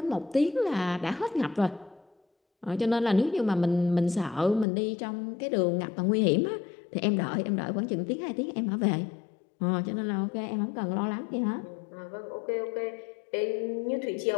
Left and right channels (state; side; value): drops out; right; at 4.7 s